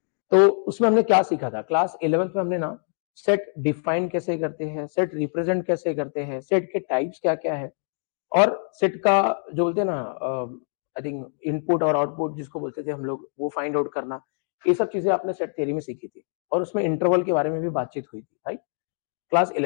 तो उसमें हमने क्या सीखा था? क्लास 11th में हमने ना सेट डिफाइन कैसे करते हैं, सेट रिप्रेजेंट कैसे करते हैं, सेट के टाइप्स क्या-क्या है, और सेट का जो बोलते हैं ना आई थिंक इनपुट और आउटपुट जिसको बोलते थे हम लोग, वो फाइंड आउट करना, ये सब चीजें आपने सेट थ्योरी में सीखी थी। और उसमें इंटरवल के बारे में भी बातचीत हुई थी, राइट? क्लास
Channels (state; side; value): silent; right; digital silence